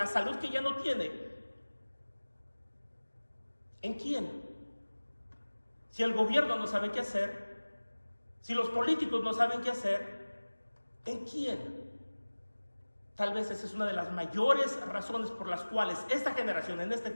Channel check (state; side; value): inverted; both; correlation -1.00